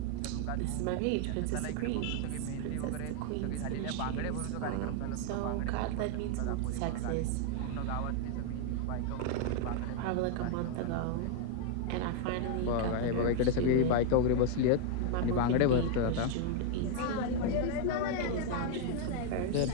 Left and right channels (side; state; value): both; different; correlation 0.00